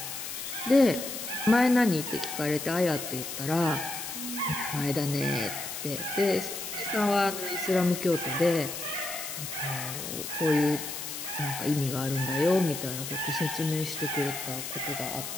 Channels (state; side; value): noise; left; hiss, 7 dB below the sound